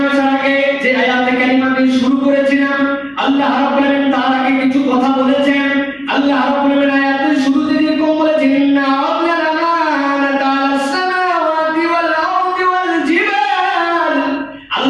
আগে যে আয়াতে কারিমা দিয়ে শুরু করেছিলাম, আল্লাহ রাব্বুল আলামিন তার আগে কিছু কথা বলেছেন। আল্লাহ রাব্বুল আলামিন আয়াতের শুরুতে যেরকম বলেছেন, ইন্না আল্লানা তাআলা সামাওয়াতি ওয়াল আরদি ওয়াল জিবাল,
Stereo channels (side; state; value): both; identical; correlation 1.00